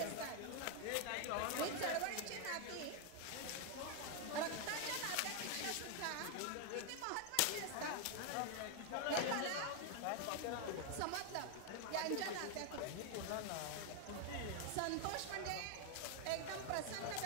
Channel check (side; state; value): both; different; correlation 0.00